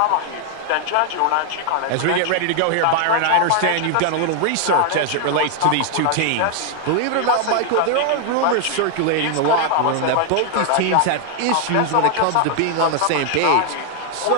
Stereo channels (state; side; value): different; both; correlation 0.00